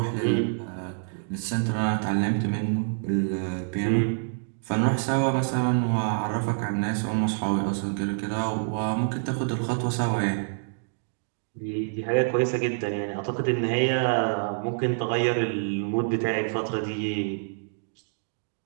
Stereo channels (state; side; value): silent; left; digital silence